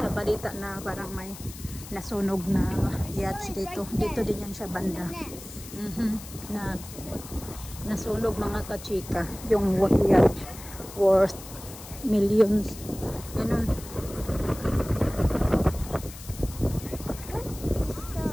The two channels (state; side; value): noise; left; hiss, 15 dB below the sound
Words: balita na parang may nasunog na yachts dito. Dito din yan siya banda. Nasunog mga kachika. Yung yacht worth millions. Ganun.